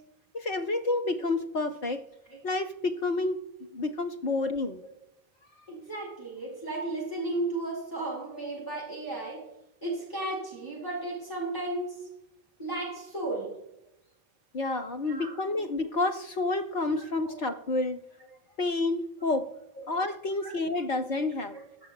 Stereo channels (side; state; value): right; late; 4.5 ms